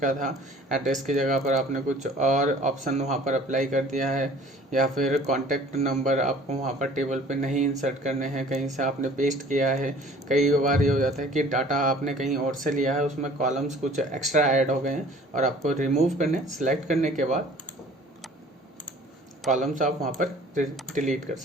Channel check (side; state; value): both; normal; correlation 0.50